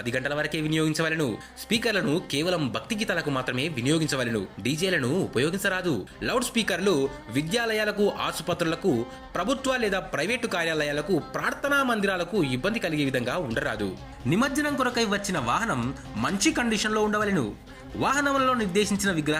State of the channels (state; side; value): identical; both; correlation 1.00